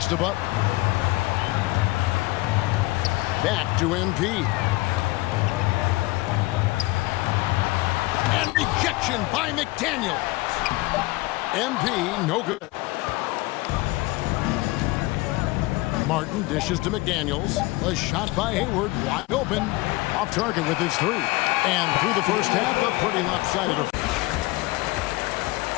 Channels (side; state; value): right; quieter; 21.3 dB